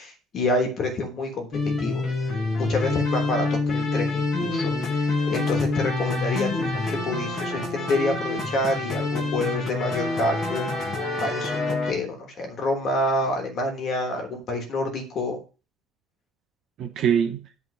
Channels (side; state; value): both; normal; correlation 0.62